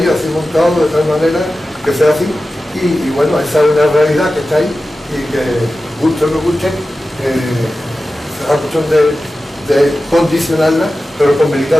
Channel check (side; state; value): both; normal; correlation 0.94